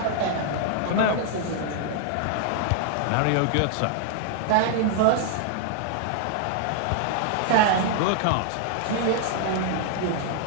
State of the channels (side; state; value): both; different; correlation 0.00